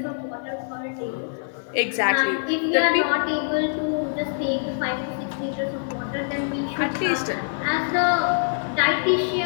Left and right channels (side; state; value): right; silent; 56 dB below the other